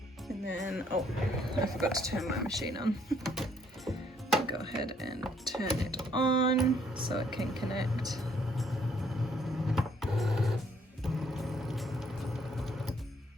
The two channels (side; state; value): both; normal; correlation 0.66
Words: And then, oh, I forgot to turn my machine on. Go ahead and turn it on so it can connect.